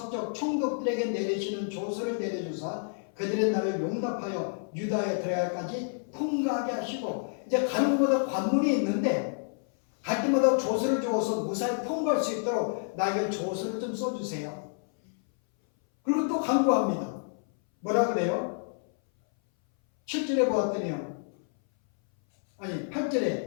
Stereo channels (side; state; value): right; silent; 59 dB below the other